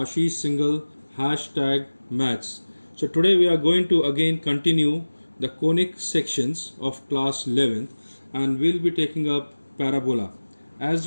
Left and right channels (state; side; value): inverted; both; correlation -1.00